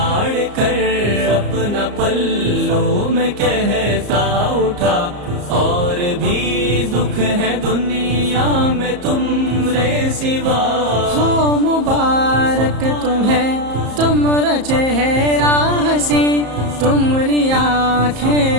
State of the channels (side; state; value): left; late; 34 ms